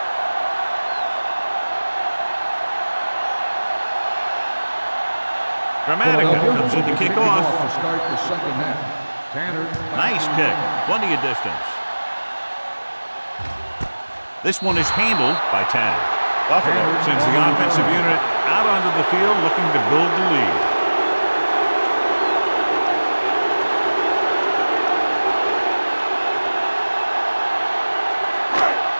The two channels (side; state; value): both; inverted; correlation -1.00